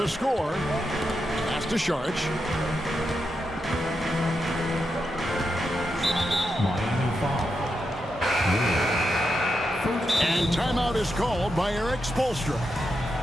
score. Pass to Sharch. Miami foul. And timeout is called by Eric Spoelstra.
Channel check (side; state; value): both; normal; correlation 0.86